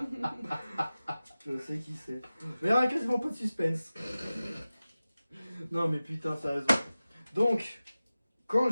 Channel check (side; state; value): both; inverted; correlation -0.96